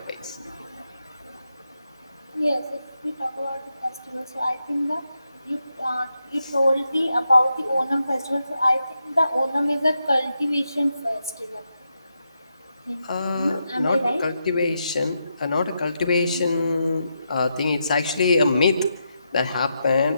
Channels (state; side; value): inverted; both; correlation -0.84